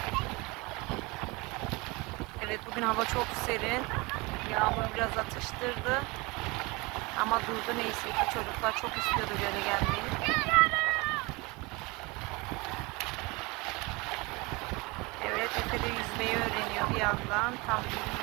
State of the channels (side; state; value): left; quieter; 25.5 dB